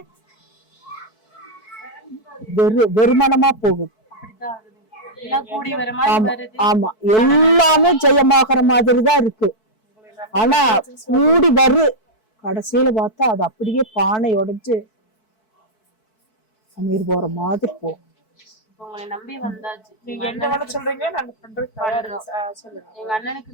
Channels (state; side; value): late; right; 4.6 ms